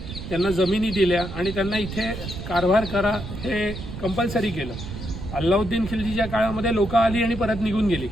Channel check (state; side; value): noise; right; rumble, 9 dB below the sound